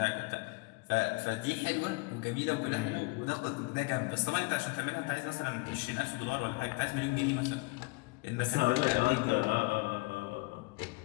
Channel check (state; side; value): quieter; right; 25.7 dB